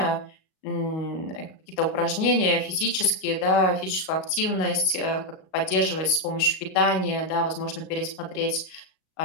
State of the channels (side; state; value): right; late; 38 ms